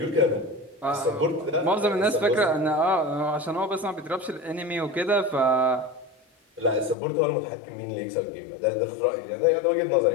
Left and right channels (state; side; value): drops out; right; at 7.0 s